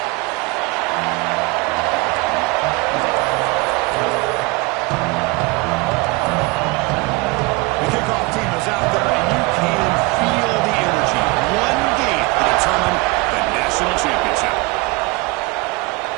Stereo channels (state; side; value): quieter; left; 25.5 dB